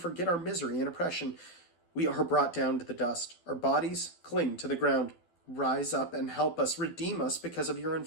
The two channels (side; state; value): right; late; 12 ms